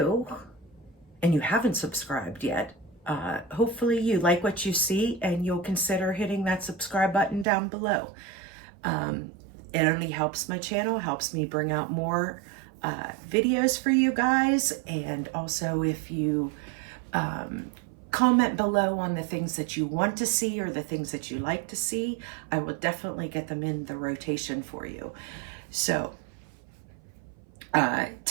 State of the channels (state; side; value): drops out; left; at 7.5 s